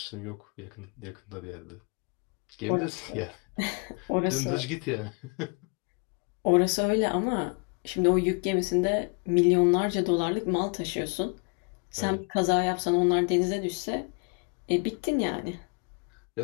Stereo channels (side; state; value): right; quieter; 34.9 dB